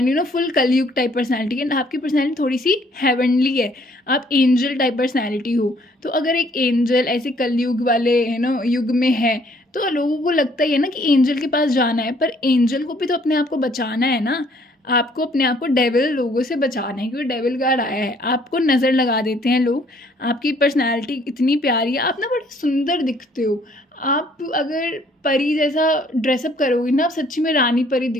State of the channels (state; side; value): normal; both; correlation 0.62